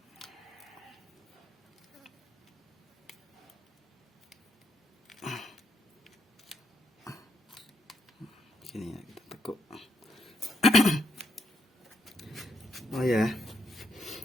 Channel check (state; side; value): normal; both; correlation 0.78